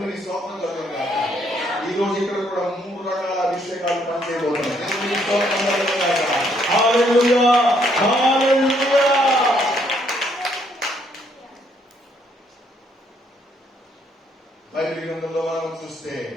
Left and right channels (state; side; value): normal; both; correlation 0.69